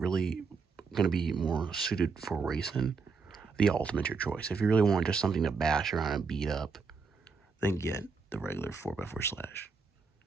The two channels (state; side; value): quieter; left; 4.9 dB